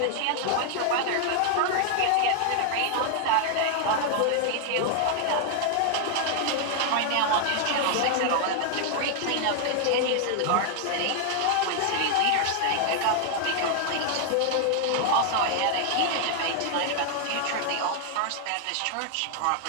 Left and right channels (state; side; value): different; both; correlation 0.00